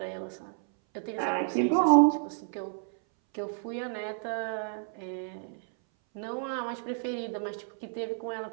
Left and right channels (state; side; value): silent; left; 57 dB below the other